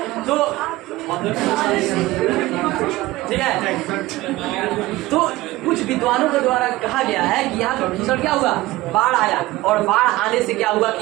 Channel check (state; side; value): quieter; left; 18.3 dB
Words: तो ठीक है, तो कुछ विद्वानों के द्वारा कहा गया है कि यहाँ पे भीषण क्या हुआ, बाढ़ आया। और बाढ़ आने से क्या हुआ